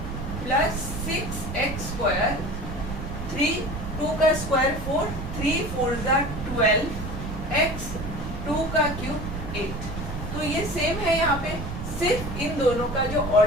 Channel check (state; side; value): noise; right; rumble, 7 dB below the sound